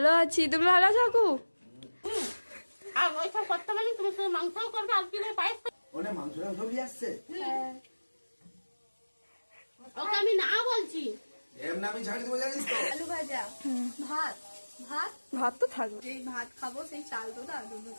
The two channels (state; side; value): inverted; both; correlation -1.00